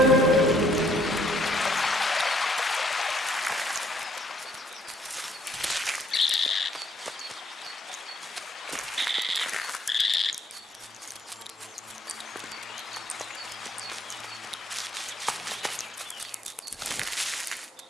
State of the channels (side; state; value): both; normal; correlation 0.66